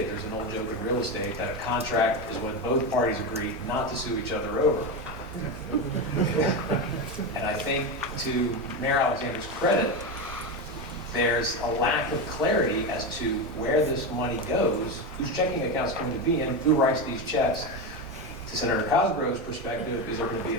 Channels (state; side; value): normal; both; correlation 0.15